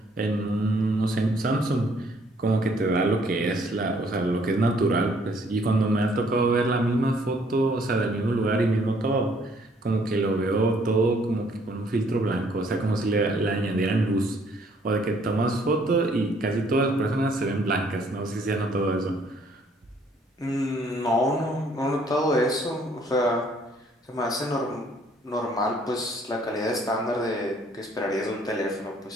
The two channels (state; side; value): normal; both; correlation 0.63